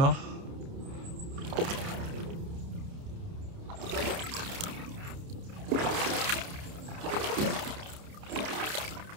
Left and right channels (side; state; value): left; late; 30 ms